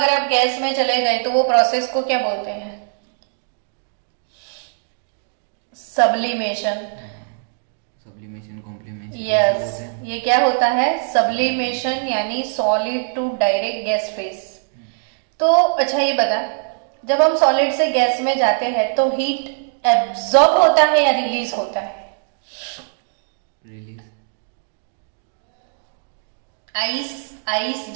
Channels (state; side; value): silent; left; 65 dB below the other